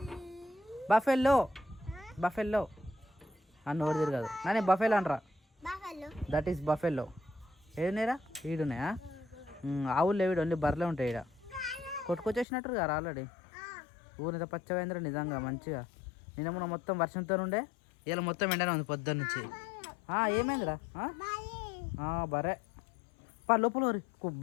బఫెల్లో నోరు తిరగదు. నానే బఫెలో అంటరా. That is buffalo. ఏడున్నాయిరా? ఈడున్నాయా? ఆవులు లేవిడు, ఓన్లీ బర్రెలే ఉంటాయి. ఇక్కడ కొట్టుకొచ్చేసినట్టు కదా ఆల్రెడీ. ఊరితో పచ్చవేంద్ర నిజంగా మంచిగా. నిన్న మొత్తం వర్షంతో ఉండే, ఇలా మొత్తం ఎండనే ఉంది పొద్దున్న నుంచి. ఏమైందిరా? బర్రె లోపల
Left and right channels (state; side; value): drops out; right; at 12.5 s